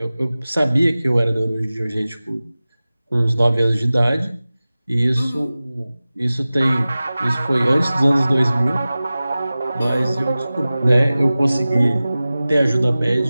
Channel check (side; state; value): both; inverted; correlation -0.97